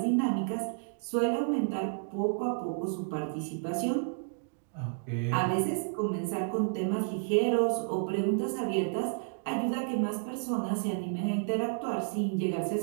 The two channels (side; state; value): left; silent; digital silence